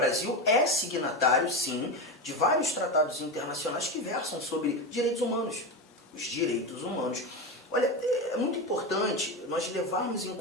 é signatário, sim, de vários tratados internacionais que versam sobre direitos humanos. Os direitos humanos. Olha, é muito importante nós levarmos em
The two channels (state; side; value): normal; both; correlation 0.18